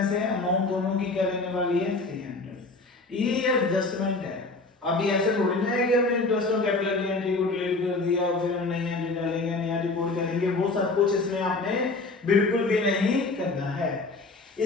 से अमाउंट दोनों की क्या रहने वाली है, 300। ये एडजस्टमेंट है। अभी ऐसे थोड़ी ना है कि हमने इंटरेस्ट ऑन कैपिटल की एंट्री को डिलीट कर दिया और फिर हम नई एंट्री डालेंगे, नया रिपोर्ट करेंगे, वो सब कुछ इसमें आपने बिल्कुल भी नहीं करना है।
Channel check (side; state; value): right; quieter; 3.5 dB